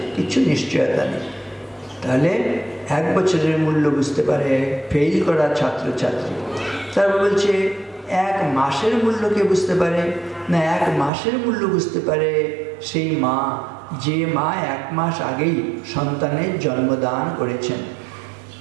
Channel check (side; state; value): left; drops out; at 11.1 s